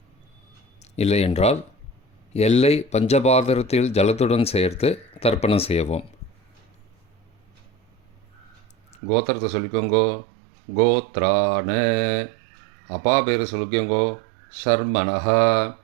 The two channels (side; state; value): left; drops out; at 9.0 s